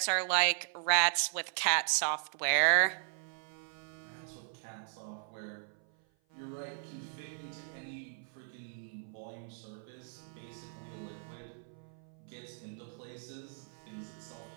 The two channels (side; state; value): left; silent; 53 dB below the other